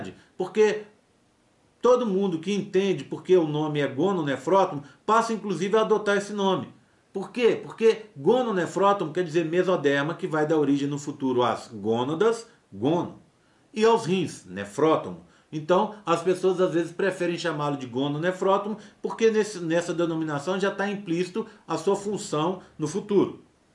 porque todo mundo que entende porque o nome é gononefrótomo passa inclusive a adotar esse nome. Por quê? Porque gononefrótomo quer dizer mesoderma, que vai dar origem no futuro às gônadas, gono, e aos rins, nefrótomo. Então, as pessoas às vezes preferem chamá-lo de gononefrótomo, porque nessa denominação já está implícito a sua função no futuro,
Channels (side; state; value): both; identical; correlation 1.00